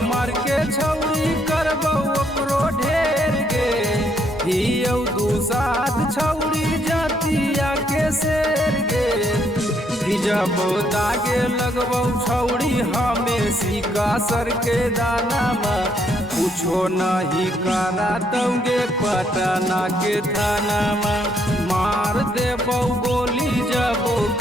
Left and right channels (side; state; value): both; normal; correlation 0.72